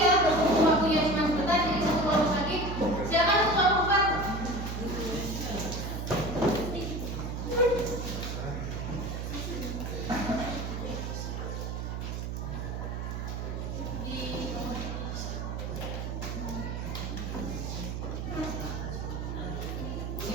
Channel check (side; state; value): right; noise; hum, 4 dB below the sound